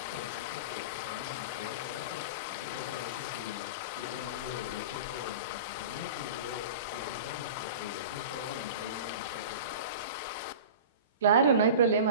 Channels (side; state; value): both; inverted; correlation -0.34